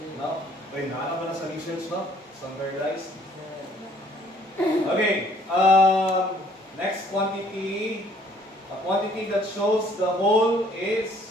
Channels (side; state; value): both; normal; correlation 0.60